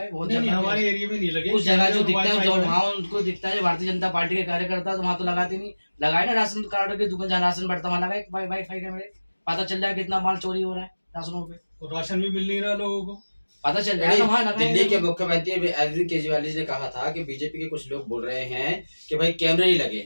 बहुत नहीं, जगह हमारे एरिया में नहीं लगे। उस जगह जो दिखता है, Wi-Fi जो जो वहाँ उनको दिखता है भारतीय जनता पार्टी के कार्यकर्ता, तो वहाँ तो लगाते नहीं। लगाए ना राशन कार्ड की दुकान, जहाँ राशन बढ़ता वहाँ लगाए वाईफाई कैमरे, पता चल रहा है कितना माल चोरी हो रहा है राशनों पे, और राशन भी मिल नहीं रहा लोगों को। पता चल रहा है ना वहाँ लगाए। दिल्ली के मुख्यमंत्री अरविंद केजरीवाल जी ने कहा था कि बीजेपी के कुछ लोग बोल रहे हैं कि भाई कैमरे नहीं लगे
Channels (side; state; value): both; inverted; correlation -1.00